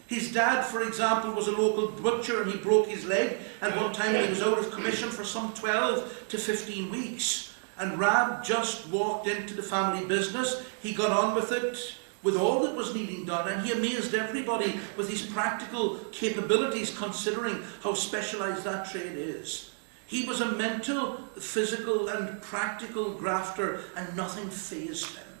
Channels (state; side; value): silent; left; 58 dB below the other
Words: His dad, for example, was a local butcher, and he broke his leg at one time, and he was out of commission for some 12 to 15 weeks. And Rab just walked into the family business. He got on with it, with all that was needing done, and he amazed everybody with his practical capabilities, considering how specialized that trade is. He was a mental, physical, and practical grafter, and nothing fazed him.